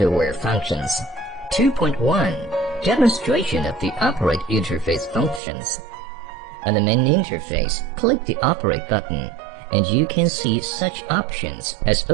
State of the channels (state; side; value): drops out; left; at 5.4 s